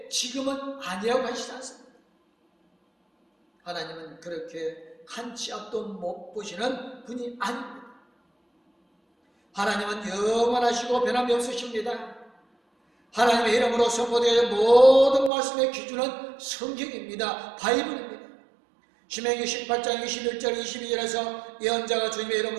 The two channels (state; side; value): drops out; left; at 15.3 s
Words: 지금은 아니라고 하시지 않습니다. 하나님은 그렇게 한 치 앞도 못 보시는 분이 아닙니다. 하나님은 영원하시고 변함이 없으십니다. 하나님의 이름으로 선포되는 모든 말씀의 기준은 성경입니다. 바이블입니다. 신명기 18장 21절 22절에서 예언자가 주님의